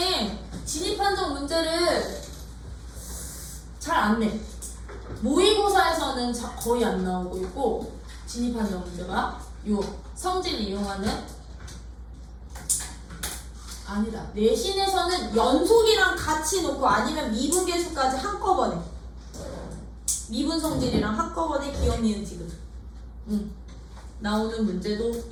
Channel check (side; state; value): both; identical; correlation 1.00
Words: 진입한정 문제를 잘 안 내. 모의고사에서는 거의 안 나오고 있고 진입한정 문제가 요 성질 이용하는 아니다. 내신에서는 연속이랑 같이 놓고 아니면 미분계수까지 한꺼번에 미분 성질이랑 한꺼번에 기억 니은 지금 나오는 문제도